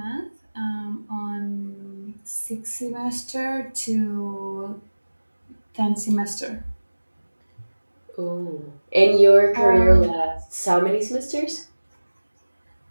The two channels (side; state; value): both; inverted; correlation -1.00